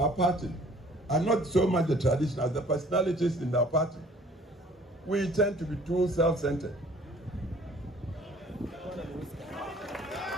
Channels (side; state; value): both; normal; correlation 0.54